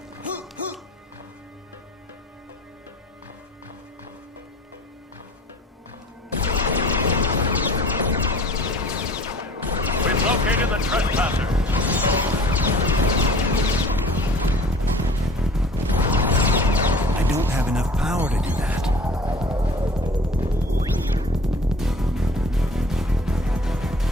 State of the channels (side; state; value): both; normal; correlation 0.46